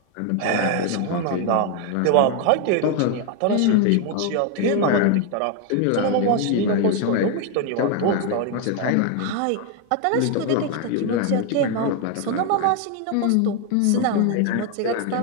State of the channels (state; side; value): different; both; correlation 0.01